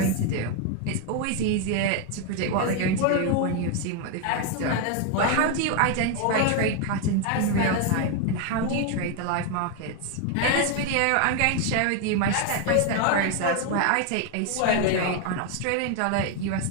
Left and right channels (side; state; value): both; different; correlation 0.01